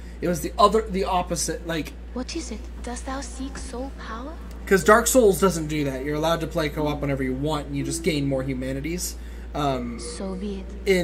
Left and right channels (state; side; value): identical; both; correlation 1.00